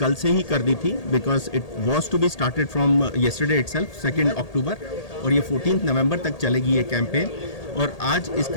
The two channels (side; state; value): right; late; 1.8 ms